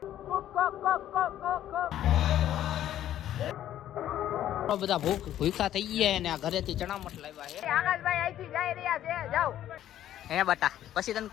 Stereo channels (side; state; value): right; quieter; 12.0 dB